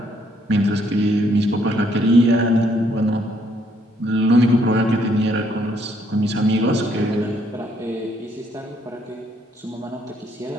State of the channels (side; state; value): both; normal; correlation 0.69